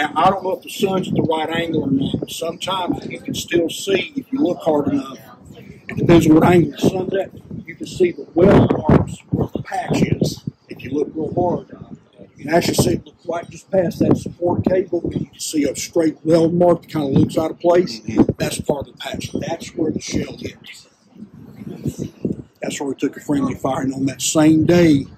I don't know if the sun's at the right angle or not, but sometimes you can still see, if you look hard enough, it depends on what angle the sun's at, you can see the weld marks where the patch is. If you look real hard, you can actually see it look right just past that support cable, and you can see a straight weld mark that kind of looks out of place. That's part of the patch. That's where the shell hit. That's where we took a friendly fire, and on that same day,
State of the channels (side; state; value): both; identical; correlation 1.00